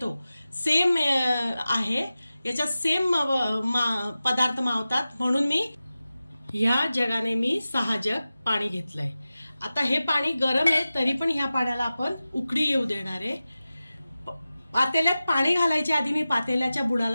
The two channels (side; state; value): both; inverted; correlation -0.95